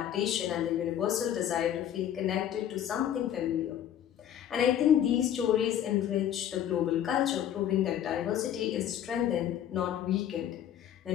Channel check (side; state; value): right; quieter; 10.4 dB